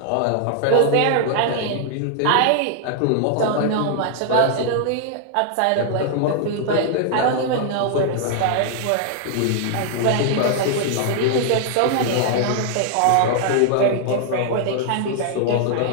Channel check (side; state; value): both; different; correlation 0.00